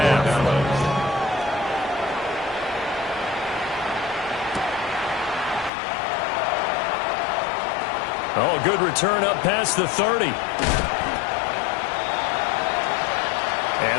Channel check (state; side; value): drops out; right; at 5.7 s